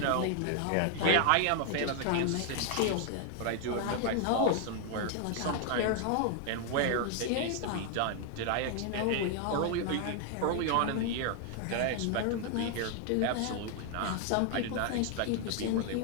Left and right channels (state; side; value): different; both; correlation 0.00